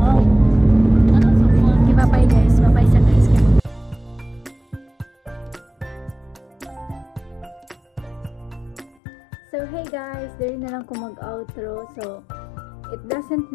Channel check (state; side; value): drops out; right; at 9.0 s